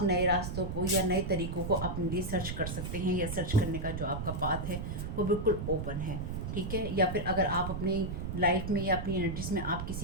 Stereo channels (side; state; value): right; noise; rumble, 4 dB below the sound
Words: नए रास्तों को या नए तरीक़ों को अपने लिए सर्च कर सकते हैं, या सर्च करने का जो आपका पाथ है वो बिल्कुल ओपन है। ठीक है, या फिर अगर आप अपनी लाइफ में या अपनी एनर्जीज में आप